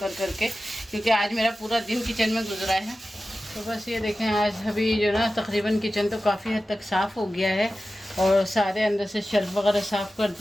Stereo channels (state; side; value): normal; both; correlation 0.94